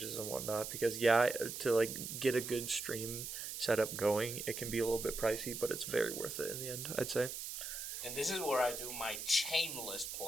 and whatnot, because, yeah, to, like, get a good stream setup going, it can be a little bit pricey, but it's very worth it in the end, I'd say. And this is where I do my shameless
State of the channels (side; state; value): right; noise; hiss, 6 dB below the sound